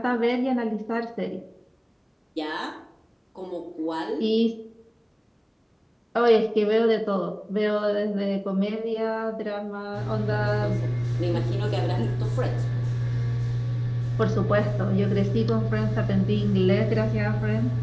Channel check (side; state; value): both; identical; correlation 1.00